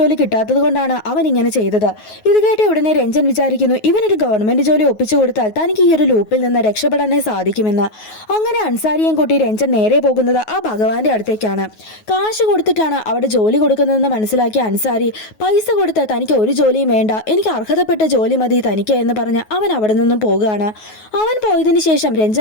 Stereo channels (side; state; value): right; late; 9.4 ms